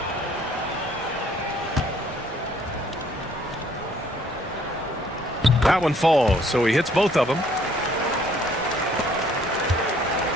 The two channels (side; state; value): both; normal; correlation 0.62